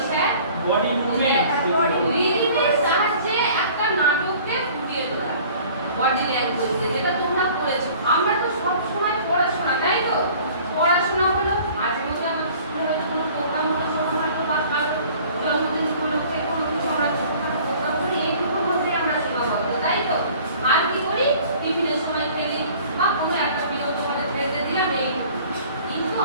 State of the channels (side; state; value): both; inverted; correlation -0.50